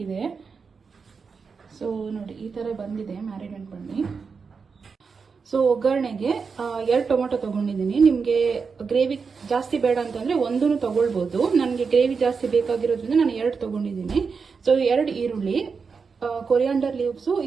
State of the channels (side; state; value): left; quieter; 5.3 dB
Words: ಸೊ ನೋಡಿ, ಈ ತರ ಬಂದಿದೆ ಮ್ಯಾರಿನೇಟ್ பண்ணி. ಸೊ ಒಗ್ಗರಣೆಗೆ 2 ಟೊಮೆಟೊ ತಗೊಂಡಿದ್ದೀನಿ. ನಿಮಗೆ ಗ್ರೇವಿ ಜಾಸ್ತಿ ಬೇಡ ಅಂತಂದ್ರೆ 1 ತಗೊಳ್ಬಹುದು. ನನಗೆ ಗ್ರೇವಿ ಜಾಸ್ತಿ ಬೇಕಾಗಿರೋದ್ರಿಂದ ನಾನು 2 ತಗೊಂಡಿದ್ದೀನಿ. ಸೊ 2 ಈರುಳ್ಳಿ, ಕೊರಿಯಾಂಡರ್ ಲೀವ್ಸು,